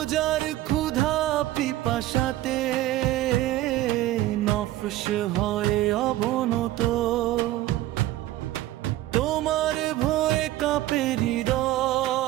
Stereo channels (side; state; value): left; quieter; 15.4 dB